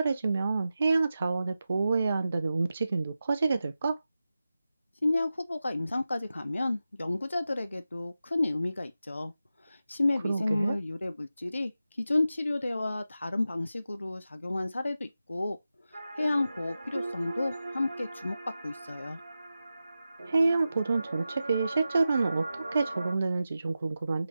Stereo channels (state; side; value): inverted; both; correlation -0.92